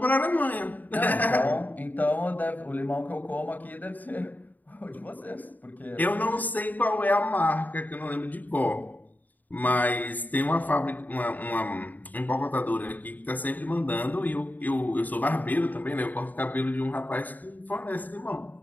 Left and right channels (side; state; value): right; late; 0.083 ms